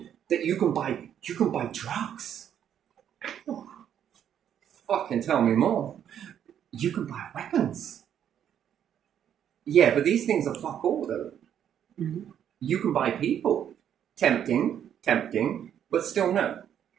that you can buy drugs? Oh, fucking tell me more. You can buy weapons. Yeah, but these things are fuck all though. Mm-hmm. You can buy people. Tempting, but still no.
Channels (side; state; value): left; quieter; 9.5 dB